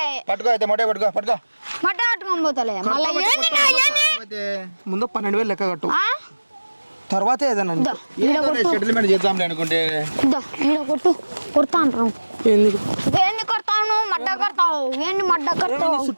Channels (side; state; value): both; inverted; correlation -1.00